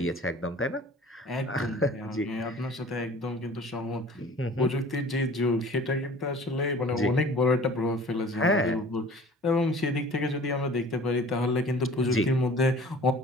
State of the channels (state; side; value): normal; both; correlation 0.46